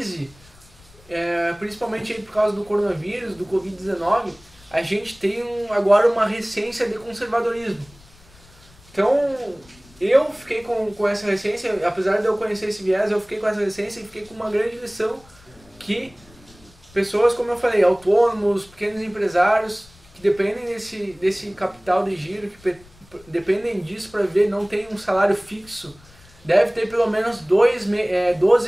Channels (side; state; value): left; noise; rumble, 26 dB below the sound